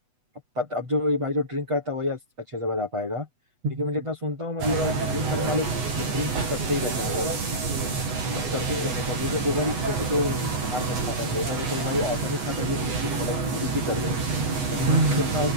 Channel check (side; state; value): left; late; 8.0 ms